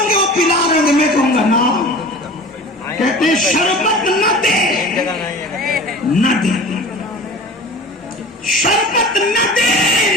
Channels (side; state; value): both; normal; correlation 0.39